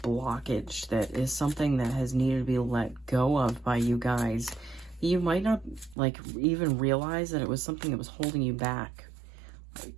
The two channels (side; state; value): left; drops out; at 6.0 s